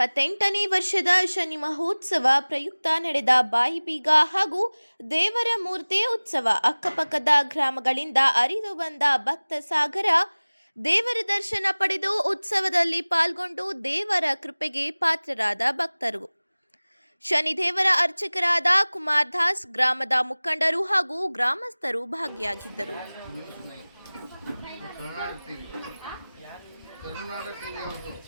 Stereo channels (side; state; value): both; inverted; correlation -1.00